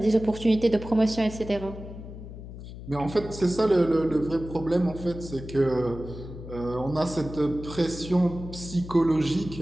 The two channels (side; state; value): left; noise; hum, 12 dB below the sound